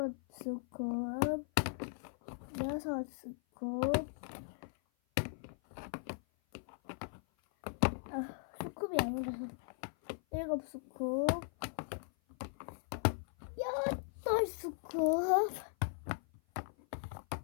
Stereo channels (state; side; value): silent; right; 52 dB below the other